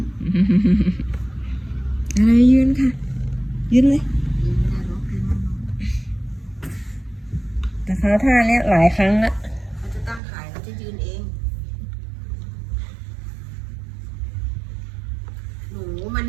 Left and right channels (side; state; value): left; drops out; at 10.2 s